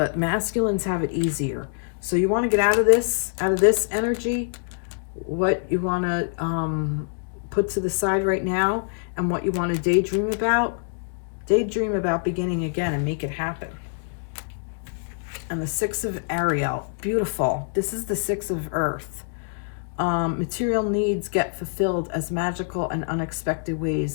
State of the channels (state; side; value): silent; right; digital silence